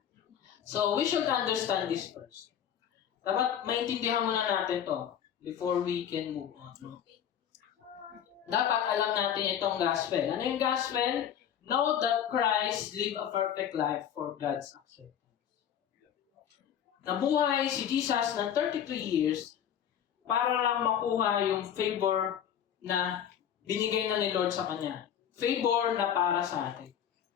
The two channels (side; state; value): right; quieter; 9.3 dB